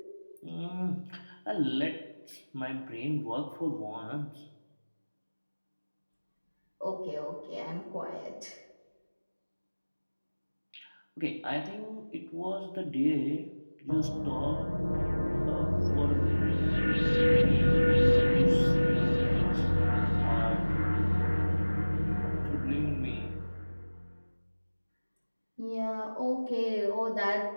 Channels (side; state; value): both; inverted; correlation -1.00